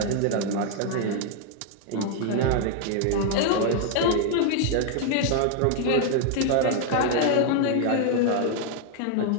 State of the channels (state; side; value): different; both; correlation 0.00